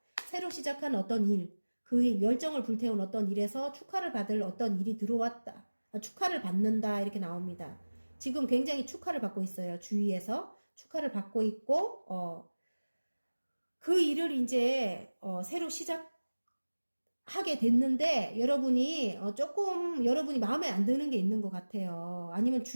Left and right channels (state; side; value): inverted; both; correlation -1.00